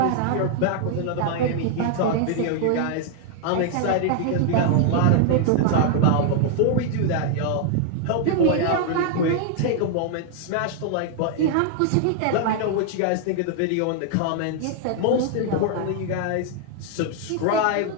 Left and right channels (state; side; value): different; both; correlation 0.00